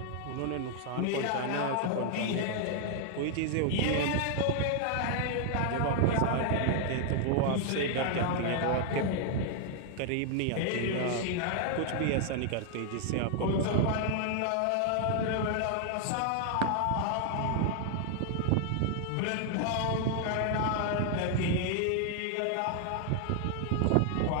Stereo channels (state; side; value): different; both; correlation 0.00